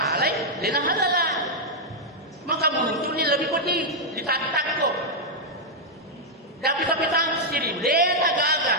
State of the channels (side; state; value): both; normal; correlation -0.03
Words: Lena halala. Maka muncul ini lebih pedih. Ditatak kok. Tapi sendiri. Lena gagal.